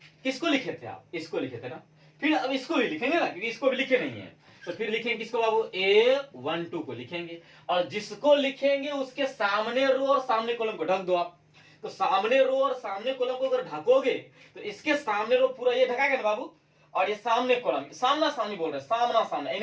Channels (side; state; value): both; identical; correlation 1.00